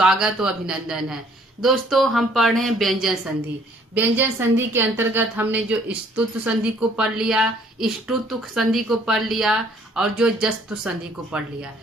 और अभिनंदन है। दोस्तों, हम पढ़ रहे हैं व्यंजन संधि। व्यंजन संधि के अंतर्गत हमने जो स्तुत्व संधि को पढ़ लिया, इष्टुत्व संधि को पढ़ लिया और जो जस्तु संधि को पढ़ लिया।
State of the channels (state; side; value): normal; both; correlation 0.61